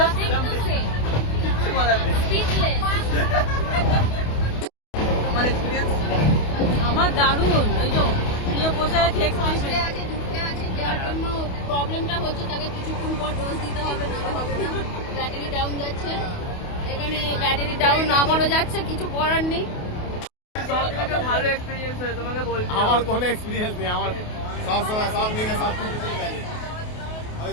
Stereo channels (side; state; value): right; late; 28 ms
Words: কিছু বলার নেই। তোমার এক্সপিরিয়েন্স? আমার দারুণ। ওই যে নিয়ে বসে আছে, ঢুকতে আছে, যার জন্য প্রবলেমটা হচ্ছে তাকে কিছুক্ষণ পর ডোজ দিতে হবে, নাহলে হবে না। ব্যাটারি ডাউন যাচ্ছে, এখানে ব্যাটারি ডাউন আমারও যাচ্ছে, কিছু করার নেই। ভালো এক্সপিরিয়েন্স হয়েছে তোমাকে বলছি। আমার কোনো এক্সপিরিয়েন্স নেই, আমার সব সময় সব দিকে সব কিছু ঠিক আছে। ওই